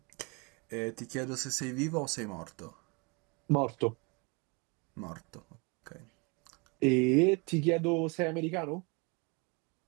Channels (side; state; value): left; quieter; 30.4 dB